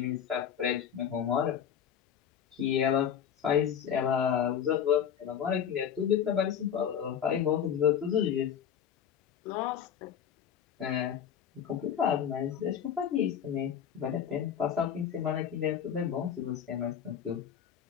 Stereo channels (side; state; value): right; quieter; 8.6 dB